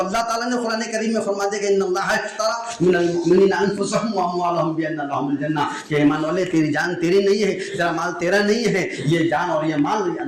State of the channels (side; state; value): both; identical; correlation 1.00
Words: تعالیٰ نے قرآن کریم میں فرما دیا کہ ان اللہ اشتری من المؤمنین انفسهم واموالهم بان لهم الجنہ، کہ ایمان والے تیری جان تیری نہیں ہے، تیرا مال تیرا نہیں ہے، یہ جان اور یہ مال